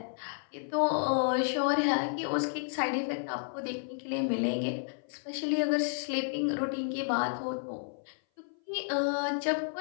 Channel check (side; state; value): right; silent; 57 dB below the other